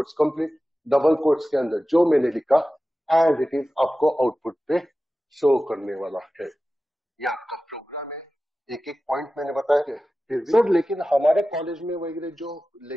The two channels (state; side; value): normal; both; correlation 0.95